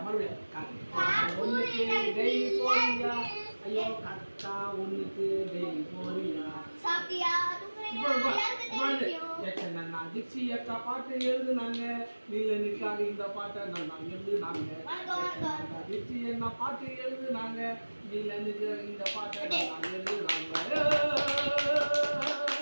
மறுபடியும் கக்கா ஒண்ணுக்கு டெய்லி போறியா, ஐயோ கக்கா ஒண்ணுக்கு டெய்லி போறியா. திக்ஷி அக்கா பாட்டு எழுதுனாங்க, நீலனுக்காக இந்த பாட்டை நல்லா எழுதுனாங்க. திக்ஷி என்ன பாட்டு எழுதுனாங்க, நீலனுக்கு இந்த பாட்டை நல்லா எழுதுனாங்க.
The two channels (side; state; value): both; inverted; correlation -1.00